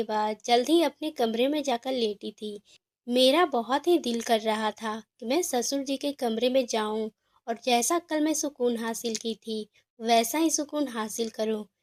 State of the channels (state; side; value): identical; both; correlation 1.00